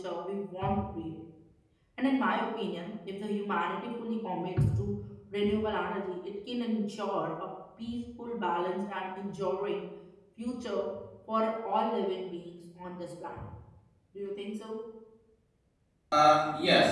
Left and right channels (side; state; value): both; identical; correlation 1.00